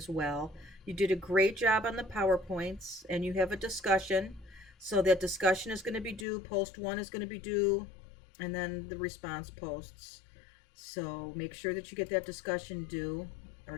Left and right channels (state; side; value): drops out; right; at 6.2 s